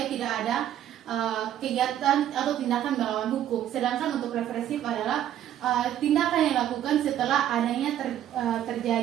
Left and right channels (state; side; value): quieter; left; 11.3 dB